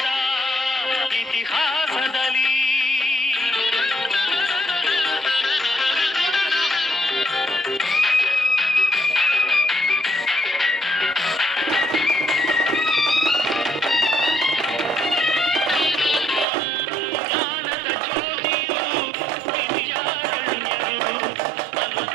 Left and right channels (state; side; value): drops out; left; at 16.4 s